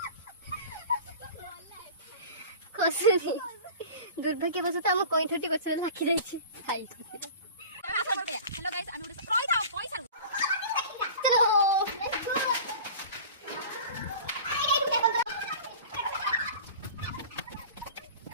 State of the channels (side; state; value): both; inverted; correlation -0.38